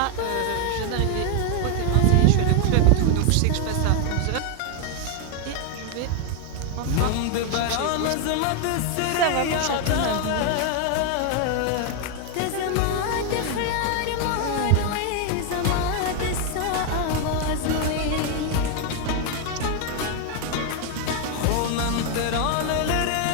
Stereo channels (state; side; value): different; both; correlation 0.01